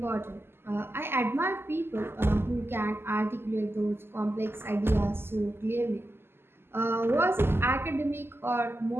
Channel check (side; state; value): left; late; 0.11 ms